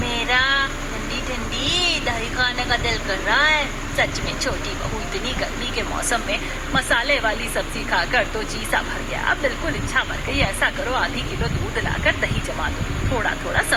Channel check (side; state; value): both; identical; correlation 1.00